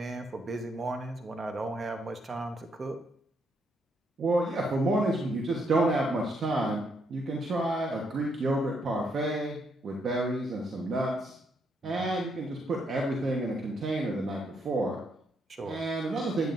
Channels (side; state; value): both; normal; correlation 0.75